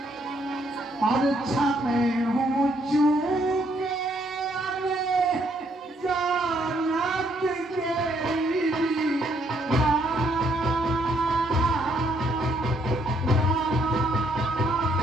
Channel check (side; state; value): both; normal; correlation 0.70